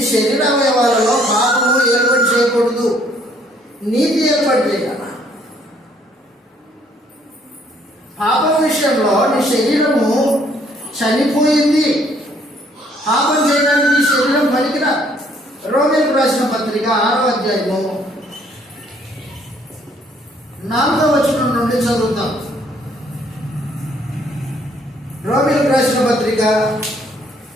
శరీర అవయవాలలో పాపము ఏర్పాటు చేయకూడదు, నీతి ఏర్పాటు చేయాలి. పాపం విషయంలో నీ శరీరము చనిపోయింది, పాపం చేయడానికి నీ శరీరం పలికిన. రోమీయులకు రాసిన పత్రిక 6వ అధ్యాయము 4వ వచనం నుండి చదువుతాం. రోమీయులకు రాసిన పత్రిక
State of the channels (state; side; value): normal; both; correlation 0.64